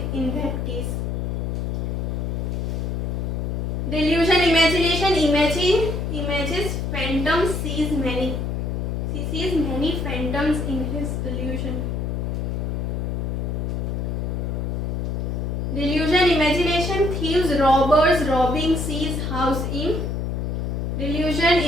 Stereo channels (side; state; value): left; noise; hum, 1 dB below the sound